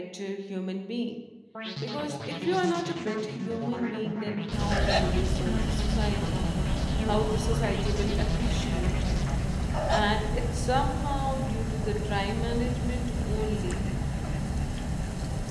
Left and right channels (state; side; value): identical; both; correlation 1.00